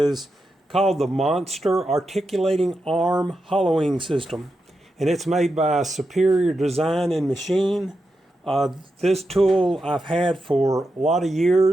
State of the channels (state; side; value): normal; both; correlation 0.87